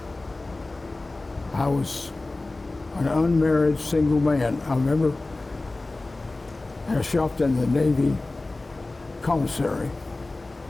I was an unmarried single man. I remember I shopped in the Navy commissary,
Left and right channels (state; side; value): quieter; right; 3.1 dB